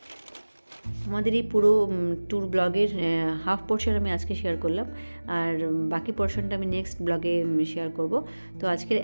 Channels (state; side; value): inverted; both; correlation -1.00